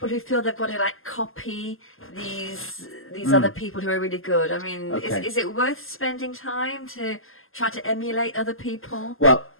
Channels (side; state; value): right; late; 0.61 ms